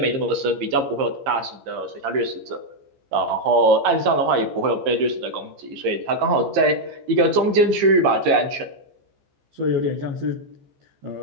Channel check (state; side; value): late; left; 14 ms